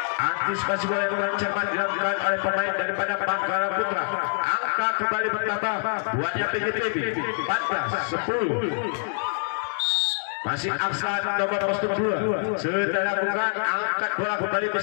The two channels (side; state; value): right; silent; digital silence